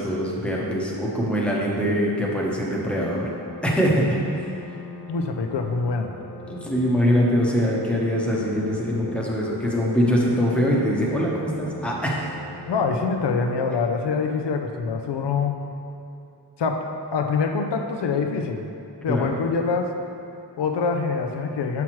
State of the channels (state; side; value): normal; both; correlation 0.43